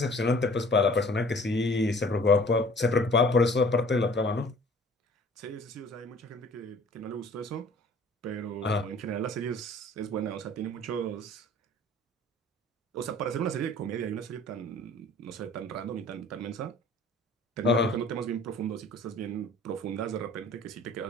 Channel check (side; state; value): both; normal; correlation 0.51